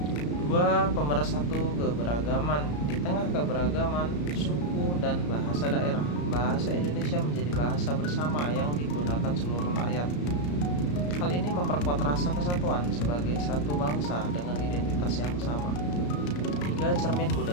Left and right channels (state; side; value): late; right; 34 ms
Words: 2. Pemersatu keberagaman. Di tengah keberagaman suku dan bahasa daerah, bahasa Indonesia menjadi bahasa bersama yang digunakan seluruh rakyat. Hal ini memperkuat rasa kesatuan sebagai satu bangsa dengan identitas yang sama. 3. Cermin